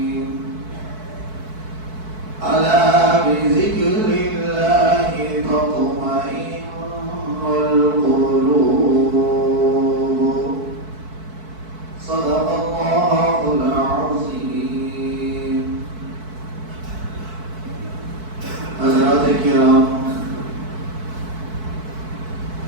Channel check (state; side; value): late; left; 4.6 ms